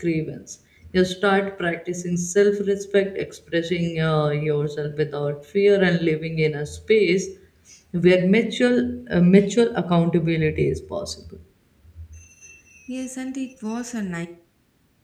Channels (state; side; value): identical; both; correlation 1.00